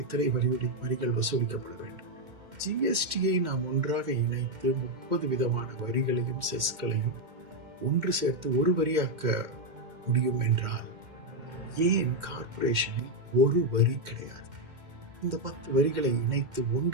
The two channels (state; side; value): late; left; 2.1 ms